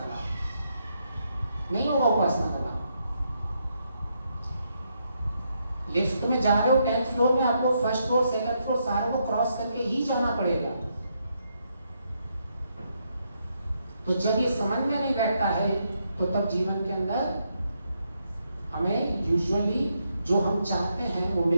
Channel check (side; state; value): both; inverted; correlation -0.79